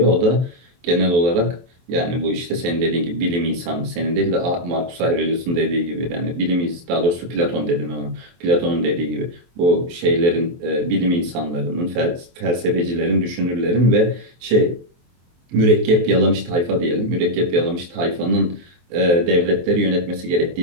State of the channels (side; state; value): left; late; 23 ms